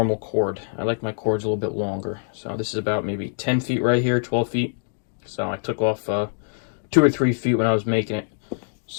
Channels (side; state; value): right; silent; digital silence